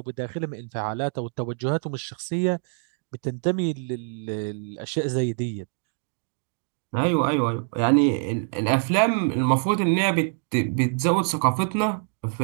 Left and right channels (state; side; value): silent; left; 62 dB below the other